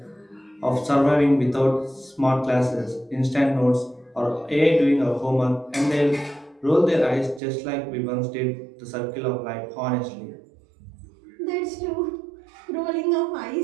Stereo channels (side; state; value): left; drops out; at 7.4 s